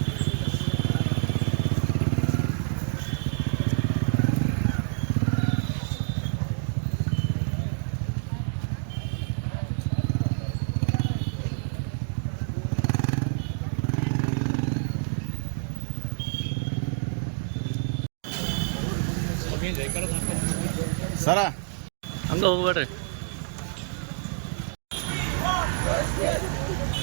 ಸರ ಹಂಗೆ ಹೋಗ್ಬೇಡ್ರಿ.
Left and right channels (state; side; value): silent; left; digital silence